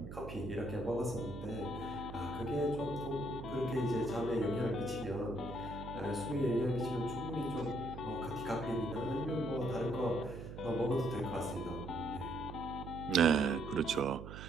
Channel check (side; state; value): right; noise; hum, 10 dB below the sound